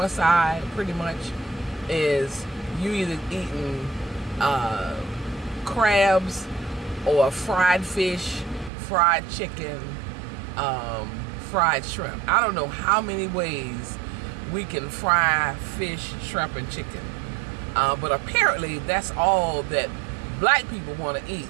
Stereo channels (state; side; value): drops out; left; at 8.7 s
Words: side pretty much is you either eating crabs or fried fish, fried chicken, fried shrimp. I don't know how many ways we can fry fish, shrimp, and chicken. But apparently that's all that black people want to eat